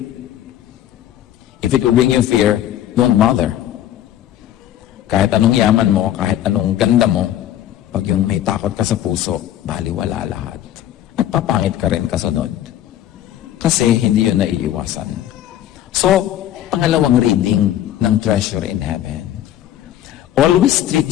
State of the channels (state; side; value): quieter; right; 12.0 dB